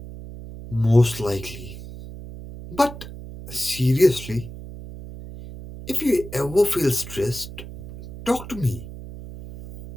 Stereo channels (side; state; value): right; noise; hum, 13 dB below the sound